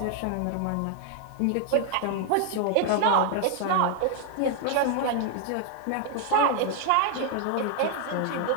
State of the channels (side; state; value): both; different; correlation 0.00